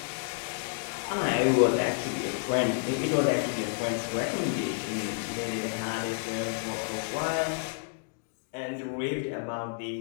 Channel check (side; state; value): right; silent; digital silence